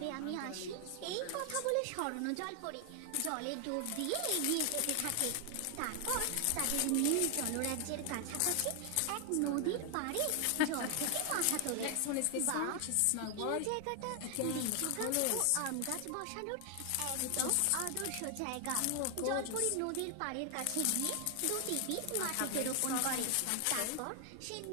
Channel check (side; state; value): both; different; correlation 0.00